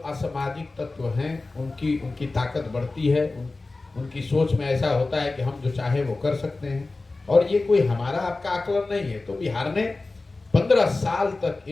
असामाजिक तत्व हैं उनकी ताकत बढ़ती है। उनकी सोच में ऐसा होता है कि हम जो चाहे वो कर सकते हैं, और ये कोई हमारा आपका आकलन नहीं है। तो बिहार ने 15 साल तक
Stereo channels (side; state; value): right; quieter; 3.4 dB